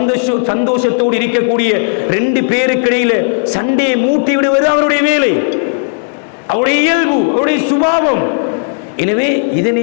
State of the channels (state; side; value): silent; right; digital silence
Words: சந்தோஷத்தோடு இருக்கக்கூடிய 2 பேருக்கு இடையில சண்டையை மூட்டி விடுவது அவருடைய வேலை, அவருடைய இயல்பு, அவருடைய சுபாவம். எனவே